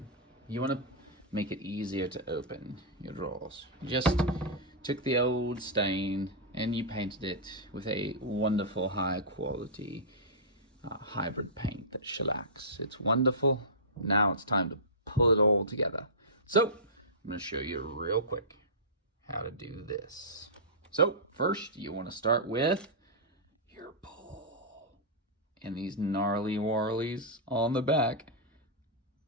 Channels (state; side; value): normal; both; correlation -0.15